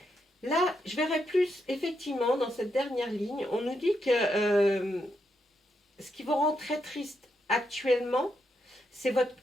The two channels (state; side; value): normal; both; correlation 0.81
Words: là, je verrai plus, effectivement, dans cette dernière ligne, on nous dit que ce qui vous rend très triste actuellement, c'est votre